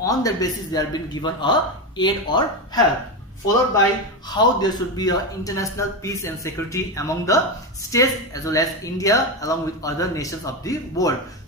that basis they are being given a aid or help, followed by how there should be a international peace and security among the states as well as India along with other nations of the world.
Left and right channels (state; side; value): normal; both; correlation 0.14